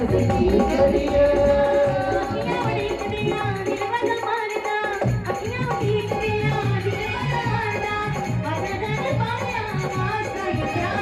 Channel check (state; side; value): identical; both; correlation 1.00